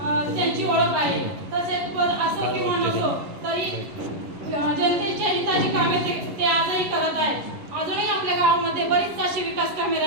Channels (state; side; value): late; left; 11 ms